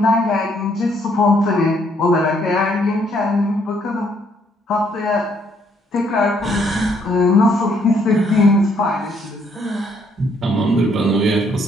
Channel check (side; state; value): both; normal; correlation 0.69